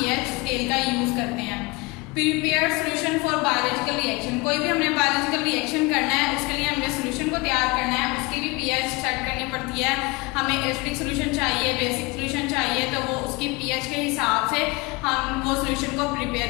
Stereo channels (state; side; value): quieter; right; 25.6 dB